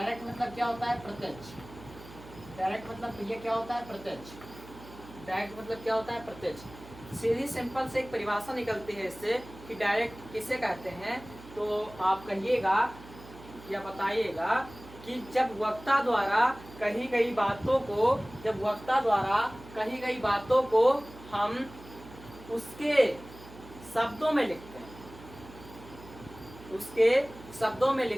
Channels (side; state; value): right; noise; hum, 18 dB below the sound